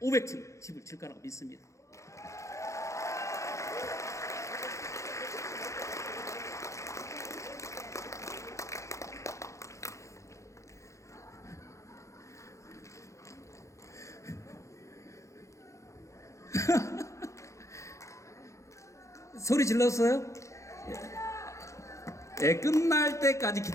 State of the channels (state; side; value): late; right; 0.15 ms